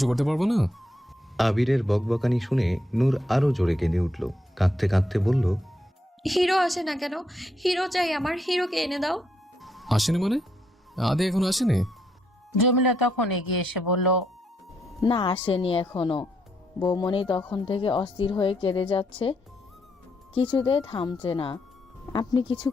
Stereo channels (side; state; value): both; normal; correlation 0.77